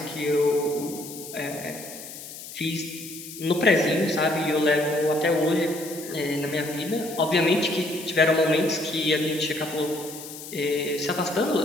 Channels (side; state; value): left; noise; hiss, 13 dB below the sound